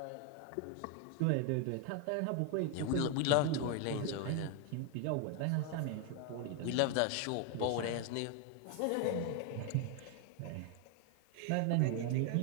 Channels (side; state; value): both; different; correlation 0.01